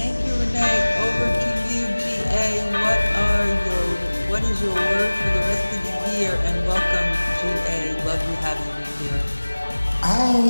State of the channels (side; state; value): both; inverted; correlation -1.00